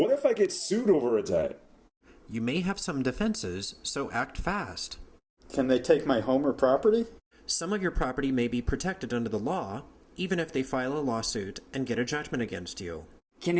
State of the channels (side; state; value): both; identical; correlation 1.00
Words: if I get sued over a debt? You may have some defenses, so act fast. Can they take my home or property? Some of your property may be protected under the law, even if they file a lawsuit and get a judgment against you. Can